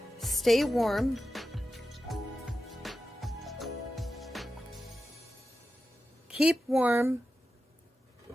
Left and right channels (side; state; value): both; normal; correlation 0.91